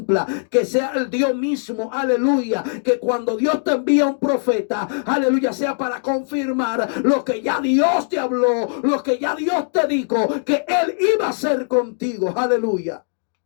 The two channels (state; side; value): silent; right; digital silence